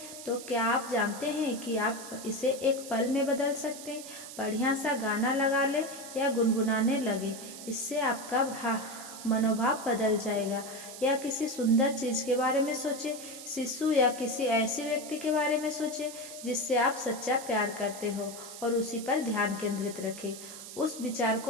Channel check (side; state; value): right; noise; hiss, 12 dB below the sound